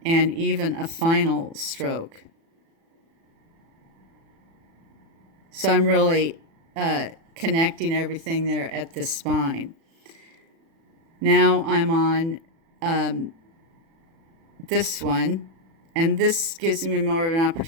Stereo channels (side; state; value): left; late; 36 ms